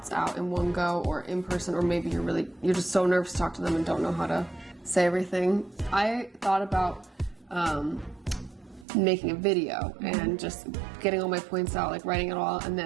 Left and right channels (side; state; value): left; drops out; at 8.8 s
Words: out in one go or in person, or maybe you're just so nervous to talk to them and don't know how to say everything. I thought about making a video and just getting all my points out, like writing it all and